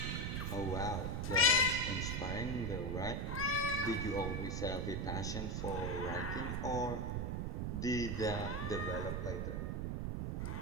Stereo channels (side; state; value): right; noise; rumble, 1 dB below the sound